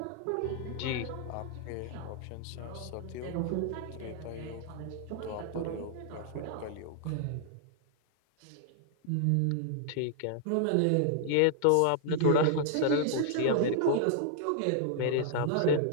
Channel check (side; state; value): both; different; correlation -0.01